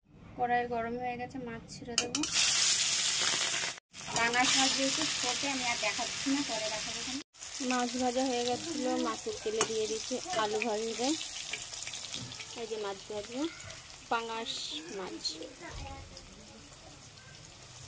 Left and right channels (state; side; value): identical; both; correlation 1.00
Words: কড়াই গরম হয়ে গেছে, মাছ ছেড়ে দেবো। পাঙাশ মাছ যেহেতু ছোটে আমি আর দেখাচ্ছি না, পরে দেখাবো। মাছ ভাজা হয়ে গেছিলো, মাছের তেলে দিয়ে দিচ্ছি আলু ভাজবে। এই যে মাছ ভাজবো, পাঙাশ মাছ